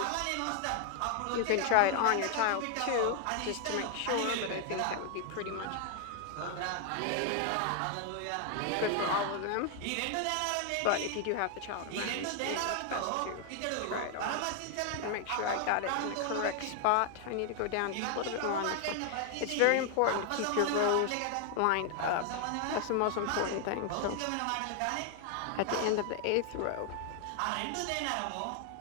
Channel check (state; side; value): different; both; correlation 0.00